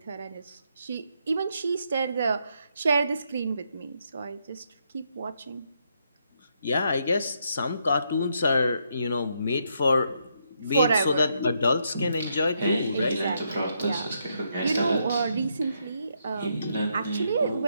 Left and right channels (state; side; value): inverted; both; correlation -0.77